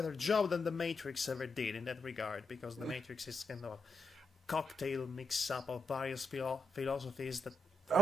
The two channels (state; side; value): normal; both; correlation 0.83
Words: job than the Matrix ever did in that regard, because the Matrix is kind of a cocktail mix-up of various philosophies that.